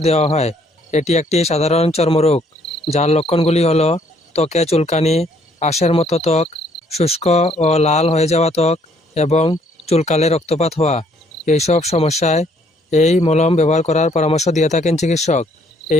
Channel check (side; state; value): both; normal; correlation 0.65